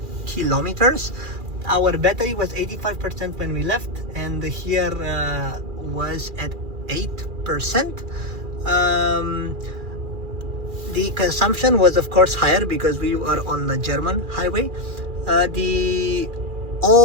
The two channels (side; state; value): left; late; 2.4 ms